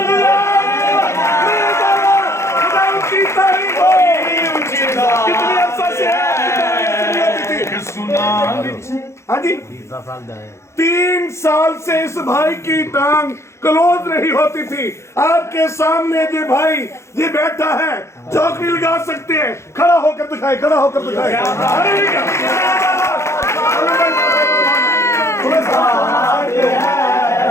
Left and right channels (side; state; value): right; late; 0.13 ms